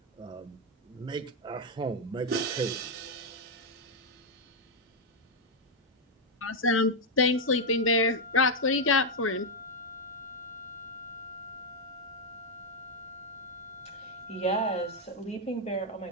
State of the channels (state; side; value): normal; both; correlation 0.00